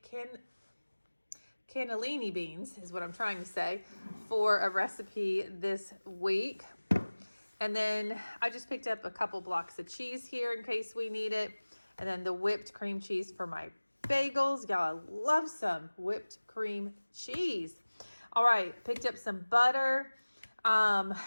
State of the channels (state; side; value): inverted; both; correlation -1.00